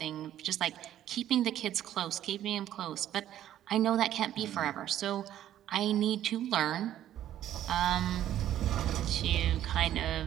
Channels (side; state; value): left; quieter; 11.8 dB